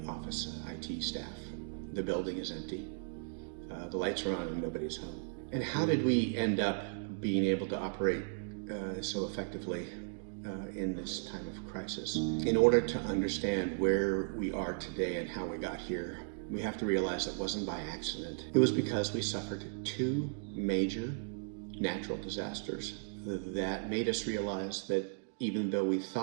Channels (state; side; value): silent; left; digital silence